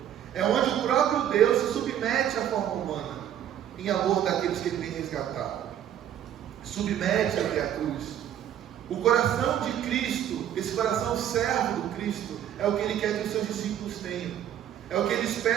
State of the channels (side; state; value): left; quieter; 10.5 dB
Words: É onde o próprio Deus se submete à forma humana, em amor daqueles que Ele tem resgatado. Submete até a cruz. O coração de Cristo, esse coração servo do Cristo, é o que Ele quer que os seus discípulos tenham. É o que Ele